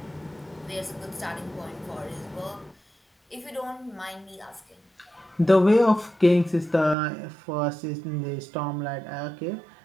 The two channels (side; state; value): left; drops out; at 7.0 s